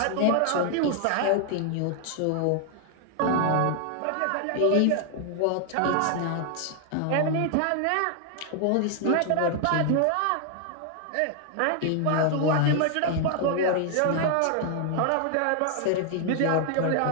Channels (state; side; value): different; both; correlation 0.00